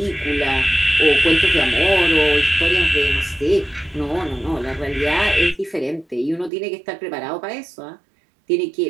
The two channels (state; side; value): drops out; left; at 6.5 s